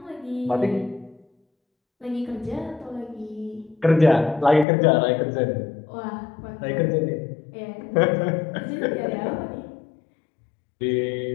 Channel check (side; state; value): right; drops out; at 4.7 s